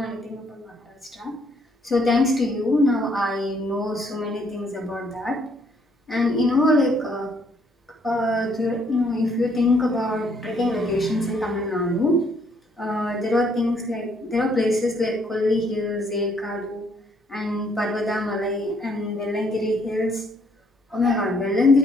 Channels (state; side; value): normal; both; correlation 0.68